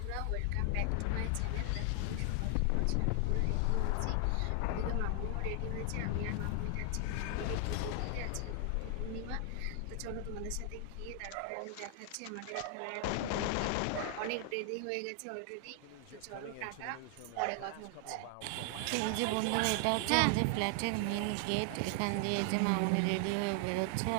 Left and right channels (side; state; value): both; different; correlation 0.00